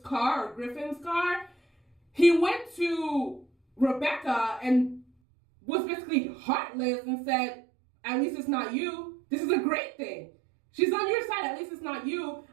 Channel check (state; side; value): drops out; left; at 5.1 s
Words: he went to Rebecca and was basically heartless and said, at least it's not you. This is a great thing. She's on your side. At least it's not you.